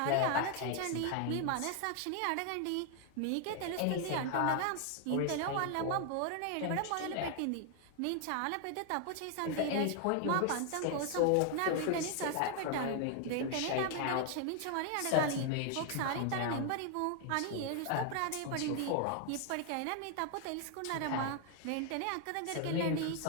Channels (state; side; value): different; both; correlation 0.00